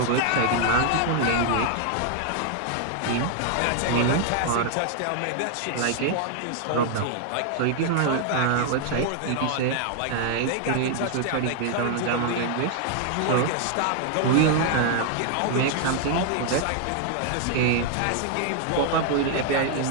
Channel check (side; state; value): both; different; correlation 0.00